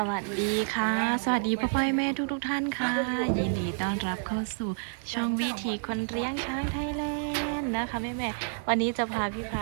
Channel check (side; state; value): left; silent; digital silence